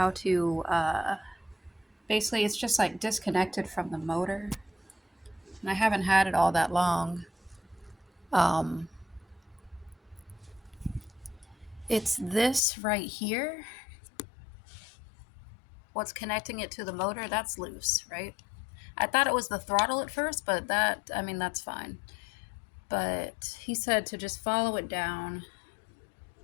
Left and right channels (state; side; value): drops out; right; at 12.6 s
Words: to, basically, it's just like disconnected from the motor. And I haven't had it all that long. Um, it's this right here. What's connecting it to the motor, that's loose, right? I thought it was the throttle at first, but that's fine. But he said to just follow it down.